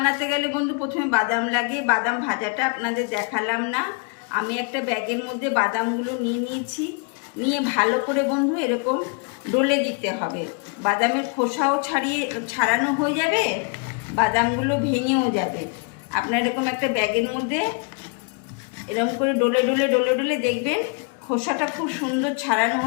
গেলে বন্ধু প্রথমে বাদাম লাগে। বাদাম ভাজাটা আপনাদের দেখালাম না। আমি একটা ব্যাগের মধ্যে বাদামগুলো নিয়েছি। নিয়ে ভালো করে বন্ধু এরকম ডলে দিতে হবে। বাদামের খোসাও ছাড়ানো হয়ে যাবে, বাদামগুলো ভেঙেও যাবে। আপনার এরকম একটা ব্যাগের মধ্যে এরকম করে ডলে ডলে ডলে ডলে দেখবেন খোসাটা খুব সুন্দর ছাড়ানো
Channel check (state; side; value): quieter; right; 34.1 dB